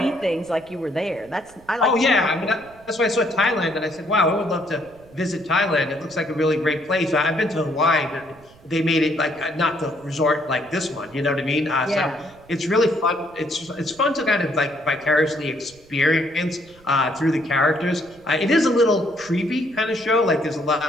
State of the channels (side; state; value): right; noise; rumble, 26 dB below the sound